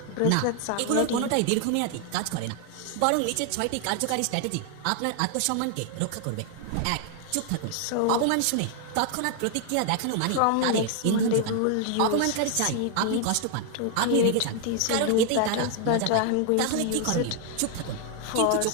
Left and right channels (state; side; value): different; both; correlation 0.00